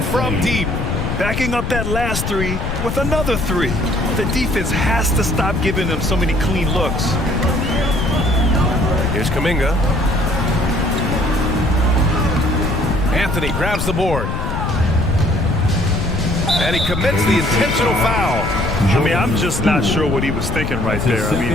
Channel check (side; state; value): left; noise; rumble, 3 dB below the sound